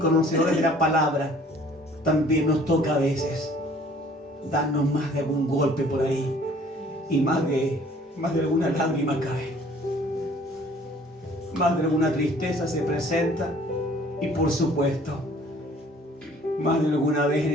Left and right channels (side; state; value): both; normal; correlation 0.55